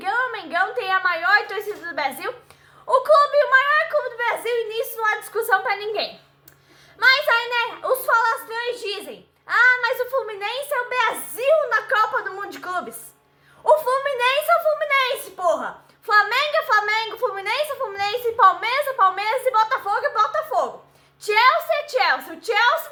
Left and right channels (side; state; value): both; identical; correlation 1.00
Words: tem a maior torcida do Brasil. O maior clube do Brasil, e nisso não há discussão pra ninguém. Mas aí, né, os falastrões dizem: ah, mas o Fluminense é o Brasil na Copa do Mundo de Clubes. O Fluminense é o Fluminense, porra. Flamengo é Flamengo, Fluminense é Fluminense, Palmeiras é Palmeiras e Botafogo é Botafogo. Chelsea é Chelsea. O Chelsea